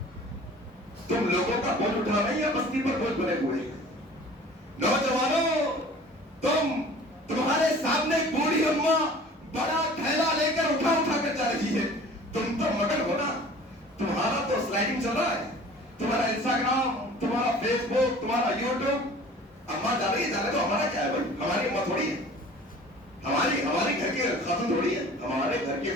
تم لوگوں کا بوجھ اٹھا رہے یا بستی پر بوجھ بنے ہوئے ہیں؟ نوجوانوں, تمہارے سامنے ایک بوڑھی اماں بڑا تھیلا لے کر اٹھا کر جا رہی ہے. تم تو مگن ہو نا, تمہارا تو سلائڈنگ چل رہا ہے, تمہارا انسٹاگرام, تمہارا فیس بک, تمہارا یوٹیوب. اماں جا رہی ہے, جانے تو ہمارا کیا ہے بھائی, ہماری اماں تھوڑی ہے, ہماری گھر کی خاتون تھوڑی ہے. ہمارے گھر کی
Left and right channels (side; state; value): both; normal; correlation 0.46